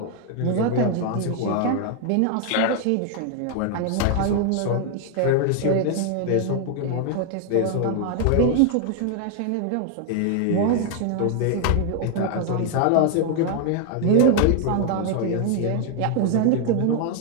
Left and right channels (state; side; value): different; both; correlation 0.00